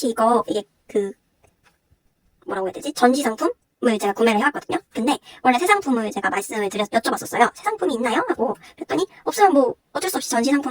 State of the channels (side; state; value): both; identical; correlation 1.00